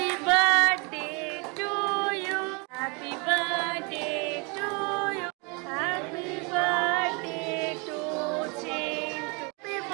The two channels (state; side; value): quieter; left; 31.2 dB